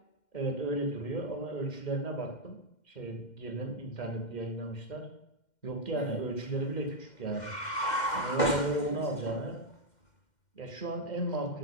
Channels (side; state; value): right; late; 2.1 ms